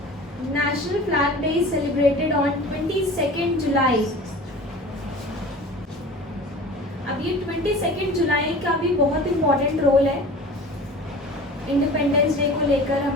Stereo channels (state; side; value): normal; both; correlation 0.39